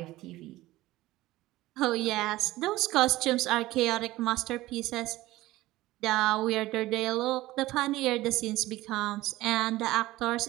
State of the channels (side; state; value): left; quieter; 17.4 dB